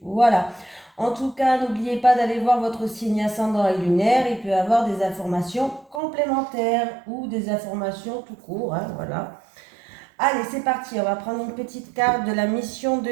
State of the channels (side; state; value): left; drops out; at 6.0 s